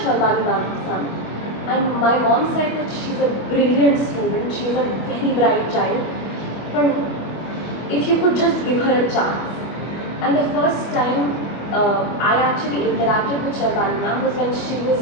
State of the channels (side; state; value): right; late; 25 ms